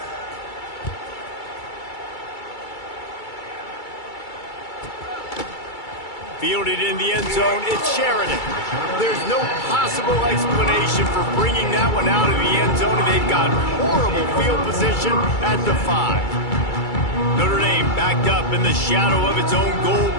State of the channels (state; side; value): late; right; 2.3 ms